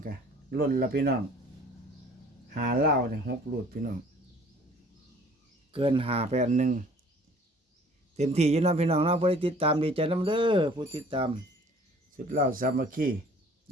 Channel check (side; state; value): both; normal; correlation 0.52